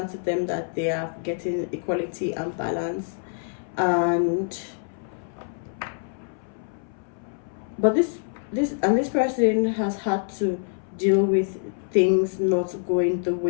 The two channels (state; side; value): silent; right; 61 dB below the other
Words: to them that they are getting equality and balance. But this person has had to deal with things not going the